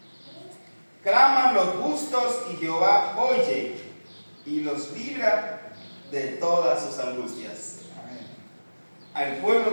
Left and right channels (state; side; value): inverted; both; correlation -1.00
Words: claman los justos y Jehová oye y los libra de todas sus angustias. Al pueblo